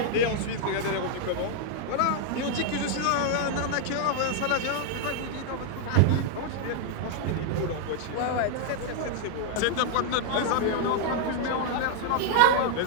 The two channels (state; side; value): different; both; correlation -0.01